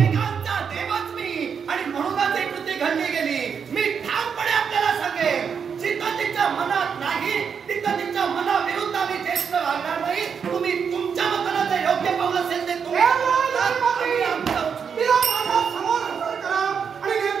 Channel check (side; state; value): left; quieter; 6.7 dB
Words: देवच मी आणि म्हणूनच ही कृती घडली गेली. मी ठामपणे आपल्याला सांगेन, जिथं तिच्या मनात नाही तिथं तिच्या मनाविरुद्ध आम्ही ज्येष्ठ वागणार नाही. तुम्ही तुमच्या मतानं जे योग्य पाऊल असेल ते तुम्ही समोर हजर करा आणि